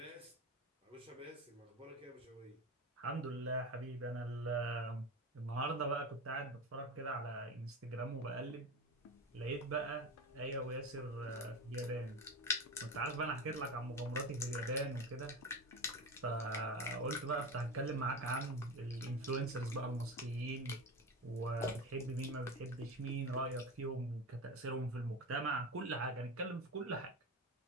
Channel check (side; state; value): both; normal; correlation 0.25